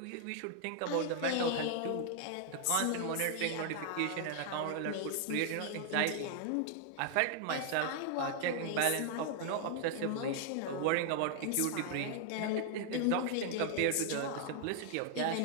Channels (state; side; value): different; both; correlation 0.00